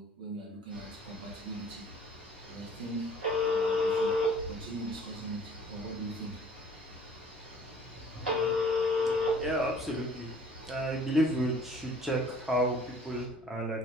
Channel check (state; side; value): normal; both; correlation 0.51